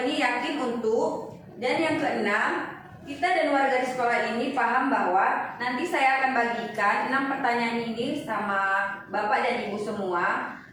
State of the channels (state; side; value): identical; both; correlation 1.00